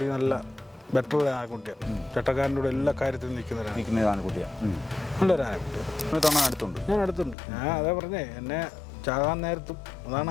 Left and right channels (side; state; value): right; drops out; at 7.4 s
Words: നല്ല ബെറ്റർ ആനക്കുട്ടിയാണ്. ചട്ടക്കാരൻ്റെ കൂടെ എല്ലാ കാര്യത്തിലും നിൽക്കുന്ന ആനക്കുട്ടിയാണ്. നല്ലൊരു ആനക്കുട്ടിയാണ്. അടുത്തുണ്ട്, ഞാൻ അടുത്തുണ്ട്. ഞാൻ അതേ പറഞ്ഞേ, എന്നെ ചാകാൻ നേരത്തും